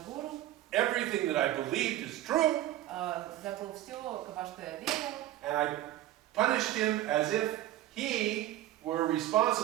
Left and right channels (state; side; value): quieter; left; 14.1 dB